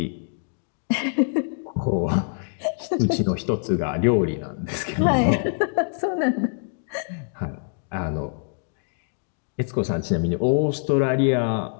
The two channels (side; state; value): right; silent; 62 dB below the other